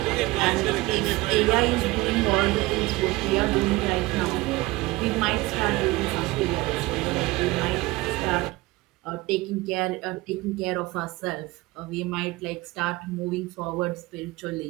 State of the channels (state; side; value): quieter; left; 21.0 dB